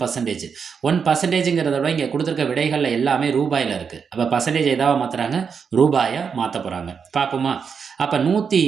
1%ங்கிறத விட இங்கே கொடுத்துருக்க விடைகளில் எல்லாமே ரூபாயில் இருக்குது. அப்போ பர்சன்டேஜ் எதாவது மாற்றுறாங்க? ரூபாயை மாற்ற போகிறாங்க. பார்ப்போமா? அப்போ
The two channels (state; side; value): quieter; left; 6.3 dB